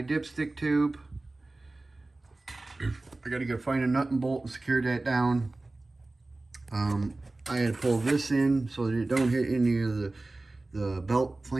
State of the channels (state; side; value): quieter; left; 3.0 dB